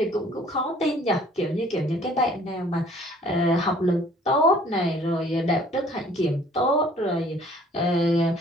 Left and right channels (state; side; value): normal; both; correlation 0.56